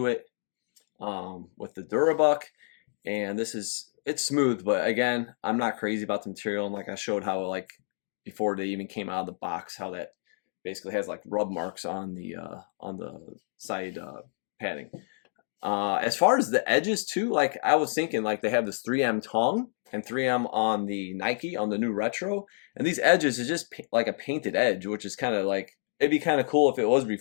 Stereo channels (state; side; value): silent; right; digital silence